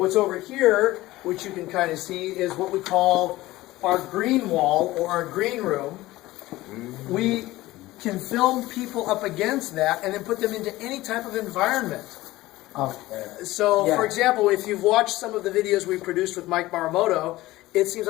over here, which you can kind of see, is what we call our green wall or our green room. We can film people up against that and then put them into any type of environment. So, for example, if you've watched some of the videos we produced with Mike Maramoto, it seems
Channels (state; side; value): quieter; right; 17.7 dB